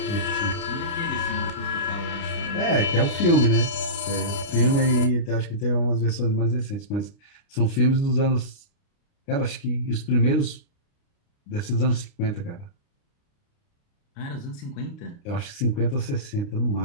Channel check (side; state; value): right; late; 29 ms